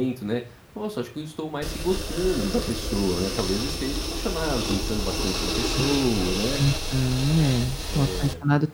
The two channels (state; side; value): identical; both; correlation 1.00